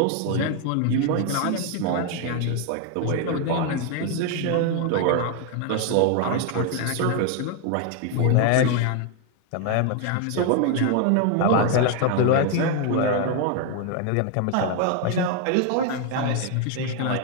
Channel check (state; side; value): different; both; correlation 0.01